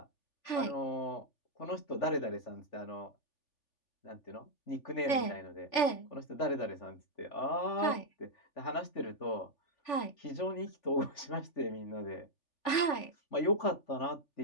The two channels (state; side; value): late; right; 3.4 ms